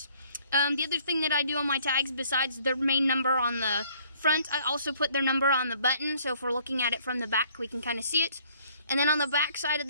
The other thing that I do on my tags, besides their main number on the front, I also put their number on the button. So if we're looking at it from the back, we can kind of see it. And then on the back side of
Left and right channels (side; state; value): both; inverted; correlation -0.61